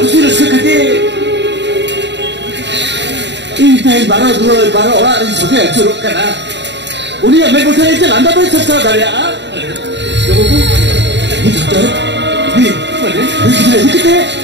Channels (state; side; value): late; left; 0.51 ms